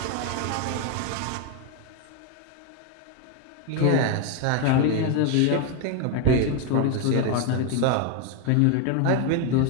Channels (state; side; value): different; both; correlation 0.01